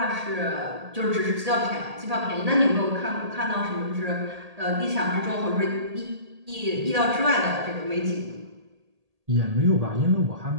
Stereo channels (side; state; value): left; late; 1.8 ms